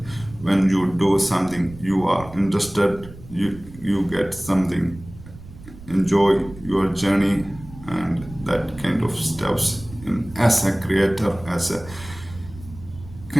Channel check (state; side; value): noise; right; rumble, 17 dB below the sound